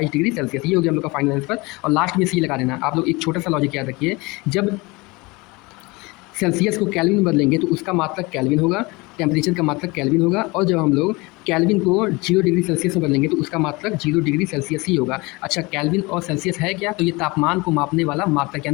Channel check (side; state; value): right; quieter; 24.6 dB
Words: डिग्री सेल्सियस। ये हो गया हम लोग का फाइनल आंसर। और लास्ट में सी लगा देना। आप लोग एक छोटा सा लॉजिक याद रखिए, जब सेल्सियस को केल्विन में बदलेंगे तो उसका मात्रक केल्विन होगा, टेम्परेचर का मात्रक केल्विन होगा, और जब हम लोग केल्विन को 0 डिग्री सेल्सियस में बदलेंगे तो उसका मात्रक 0 डिग्री सेल्सियस ही होगा। अच्छा, केल्विन और सेल्सियस है क्या, तो ये तापमान को मापने वाला मात्रक